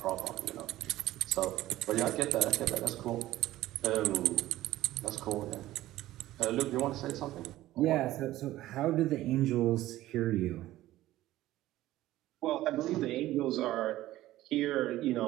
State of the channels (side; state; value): left; quieter; 15.5 dB